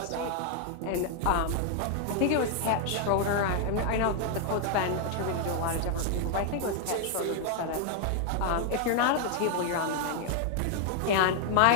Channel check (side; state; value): both; different; correlation 0.00